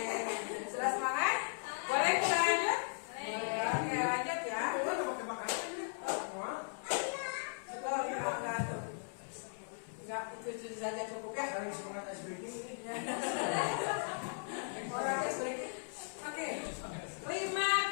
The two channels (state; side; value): silent; right; 53 dB below the other